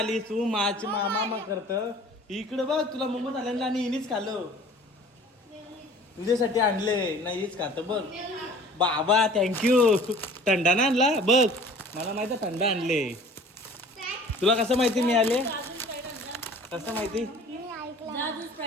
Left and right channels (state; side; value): normal; both; correlation 0.47